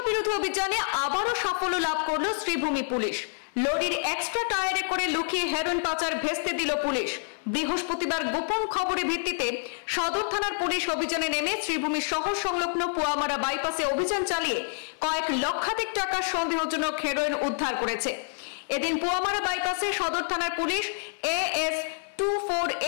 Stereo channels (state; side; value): silent; right; 55 dB below the other